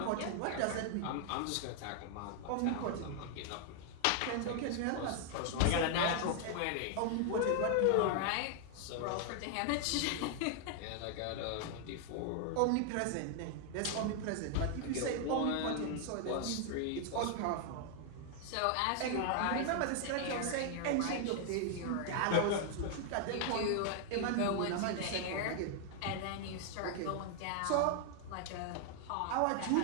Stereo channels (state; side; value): different; both; correlation 0.00